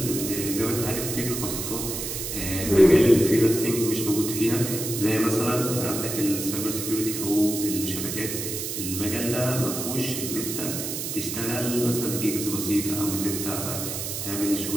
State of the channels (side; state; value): right; noise; hiss, 4 dB below the sound